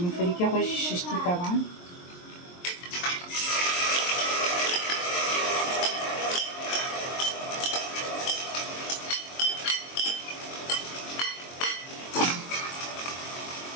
فریکه خوشی ششتی طبعا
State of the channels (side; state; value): right; late; 23 ms